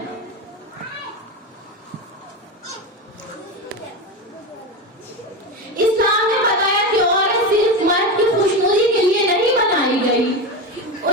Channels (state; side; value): normal; both; correlation 0.20